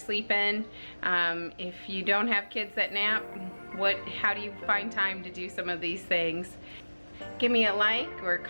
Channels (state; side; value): inverted; both; correlation -1.00